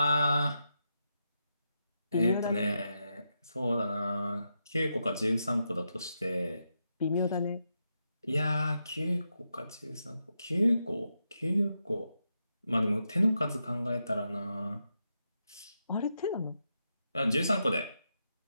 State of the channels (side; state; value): both; inverted; correlation -0.85